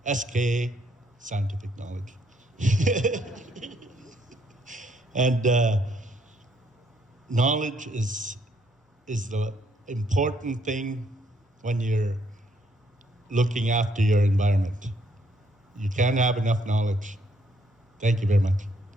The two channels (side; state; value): both; normal; correlation 0.70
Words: SK, scientific knowledge. And knowledge is the important thing when you're looking after your environment. You can't have enough knowledge. Thank you very much.